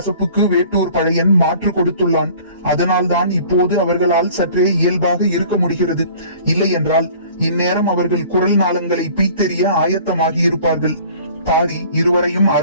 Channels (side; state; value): both; inverted; correlation -0.49